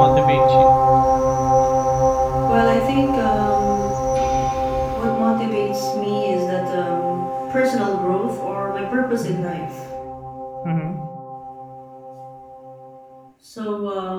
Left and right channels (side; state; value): both; identical; correlation 1.00